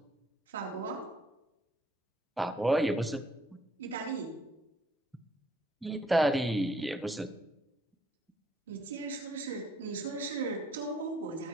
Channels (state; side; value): normal; both; correlation 0.66